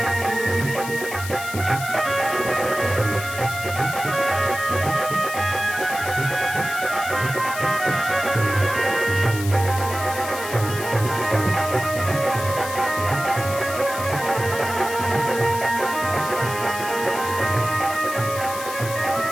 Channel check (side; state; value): left; noise; hiss, 10 dB below the sound